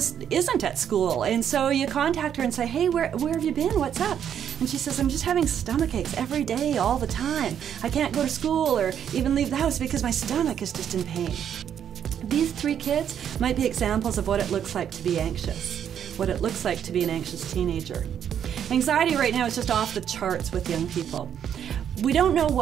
isn't at school, and so you contact her and say, "Hey, where have you been? What's up?" And she says, "I'm just having stomach aches every day, all the time. I can't go to school or even leave the house because my stomach is just in pain." These 3 kids might be examples of what it looks like to be anxious, what it looks like to be an anxious teenager. Anxiety right now is just off the charts with young people. We don't know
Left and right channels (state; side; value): quieter; left; 8.9 dB